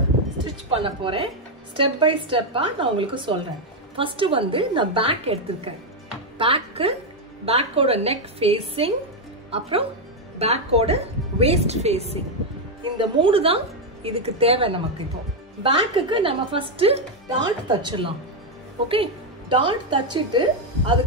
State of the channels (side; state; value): both; normal; correlation 0.03